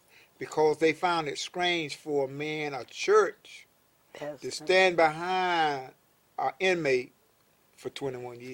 because they found it strange for a man, a church, to stand behind an inmate for 21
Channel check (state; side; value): identical; both; correlation 1.00